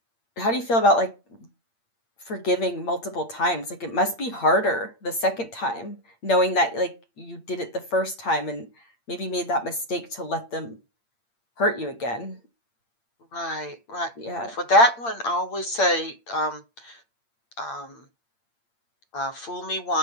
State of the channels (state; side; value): late; right; 8.7 ms